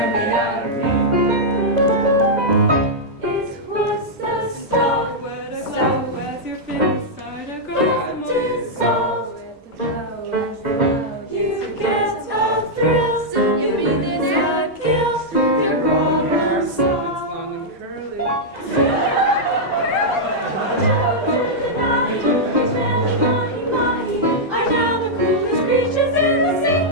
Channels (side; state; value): both; normal; correlation -0.06